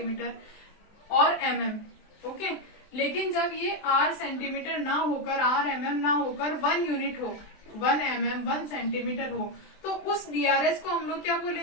और mm, ओके। लेकिन जब ये R सेंटीमीटर ना होकर, R mm ना होकर 1 यूनिट हो, 1 mm 1 सेंटीमीटर हो, तो उस DRH को हम लोग क्या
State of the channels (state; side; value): late; right; 23 ms